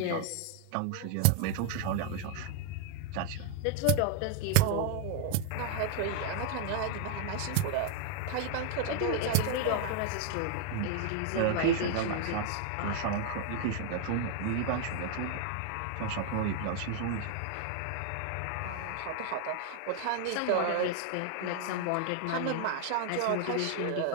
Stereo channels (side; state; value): both; different; correlation 0.00